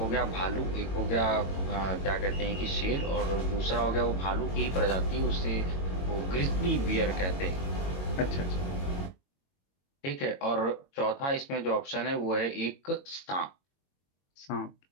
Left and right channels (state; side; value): late; right; 22 ms